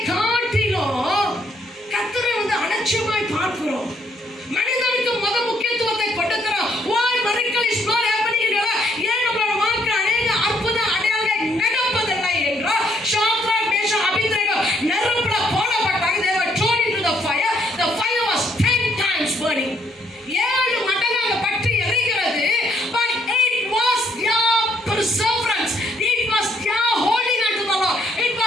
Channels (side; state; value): both; normal; correlation 0.70